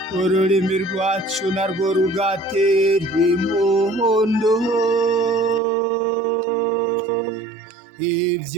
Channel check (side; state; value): left; drops out; at 5.6 s